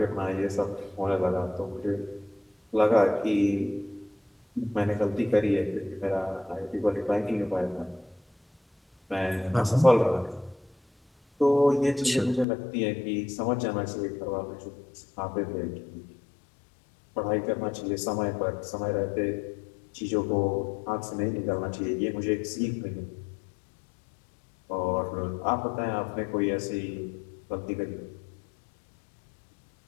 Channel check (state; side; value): drops out; right; at 12.5 s